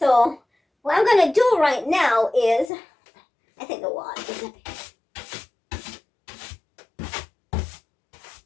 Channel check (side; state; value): right; drops out; at 2.7 s